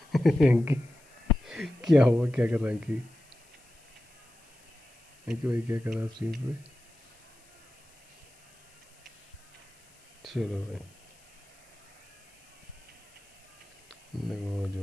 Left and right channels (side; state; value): left; noise; hiss, 29 dB below the sound